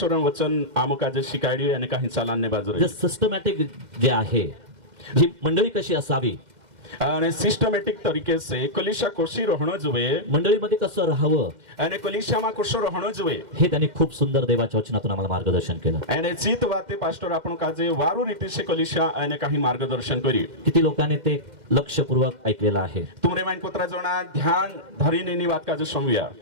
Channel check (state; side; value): late; left; 2.1 ms